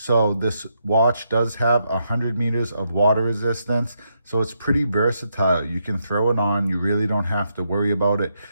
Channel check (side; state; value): both; inverted; correlation -0.80